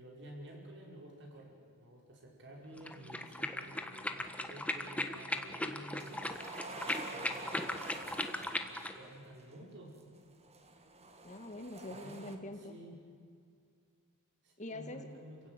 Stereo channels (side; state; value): both; normal; correlation 0.48